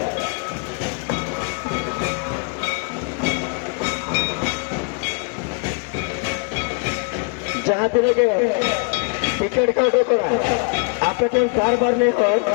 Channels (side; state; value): right; quieter; 35.3 dB